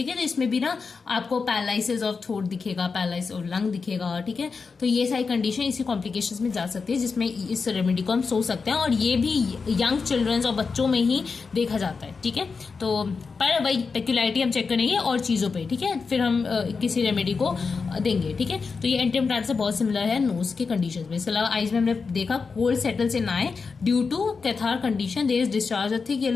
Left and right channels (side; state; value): right; quieter; 4.9 dB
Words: है। तो इसमें भी ना आपको पैरालिसिस ऑफ थ्रोट दिखेगा, पैरालिसिस ऑफ लंग दिखेगा, ठीक है। तो ये सारी कंडीशन इसी कॉम्प्लिकेशंस में जा सकती है जिसमें इस रेमेडी को हम सोच सकते हैं, और ये भी यंग चिल्ड्रंस और बच्चों में ही देखा जाता है, ठीक है। तो पर वही पेक्युलरिटी हम चेक करेंगे और चीजों पे, ठीक है, फिर हम किसी रेमेडी को देंगे, ठीक है। तो ये एंटिमटार से बहुत सिमिलर है नोज के कंडीशन में। इसके अलावा आइज में हमने देखा cold settles in eye due to catarrh condition, there is discharge of thick